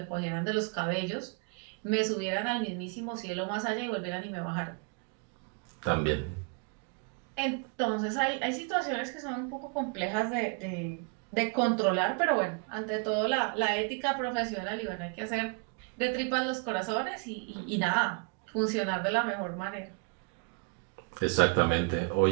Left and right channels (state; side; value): quieter; left; 33.9 dB